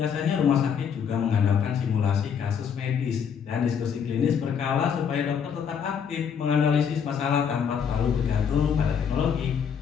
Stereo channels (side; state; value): right; quieter; 7.3 dB